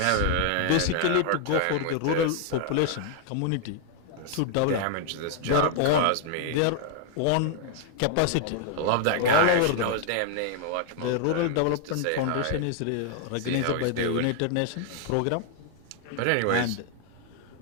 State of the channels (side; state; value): both; different; correlation 0.00